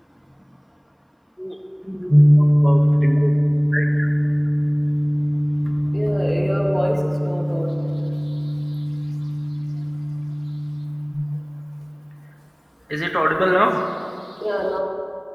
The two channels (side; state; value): both; identical; correlation 1.00